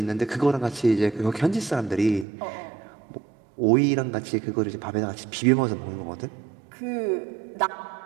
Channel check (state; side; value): drops out; left; at 2.2 s